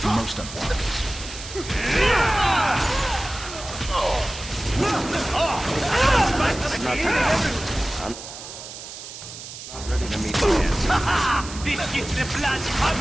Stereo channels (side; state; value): right; noise; hiss, 12 dB below the sound